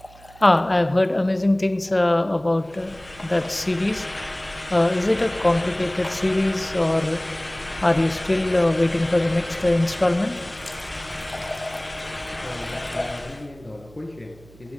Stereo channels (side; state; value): right; noise; hum, 24 dB below the sound